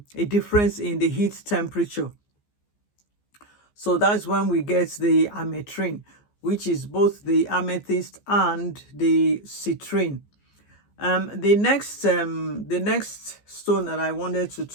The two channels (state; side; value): late; right; 14 ms